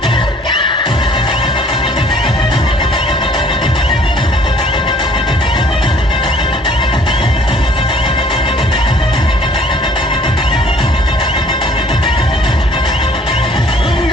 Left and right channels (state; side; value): normal; both; correlation 0.56